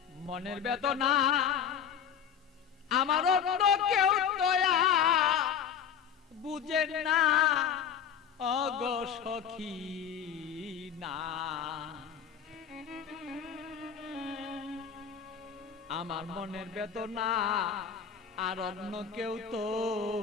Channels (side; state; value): right; quieter; 8.0 dB